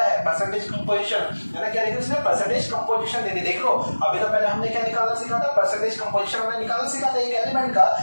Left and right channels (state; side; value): inverted; both; correlation -1.00